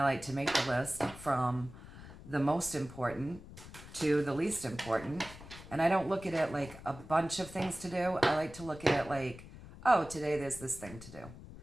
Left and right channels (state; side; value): noise; left; rumble, 16 dB below the sound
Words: like to make the list from the most important to the least important. And I don't look at it like a bunch of things to do. I like to look at it like, oh, today there's this thing to do.